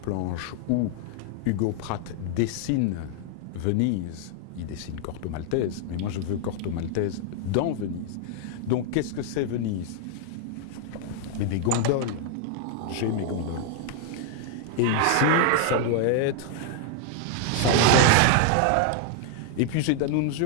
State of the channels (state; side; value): different; both; correlation 0.00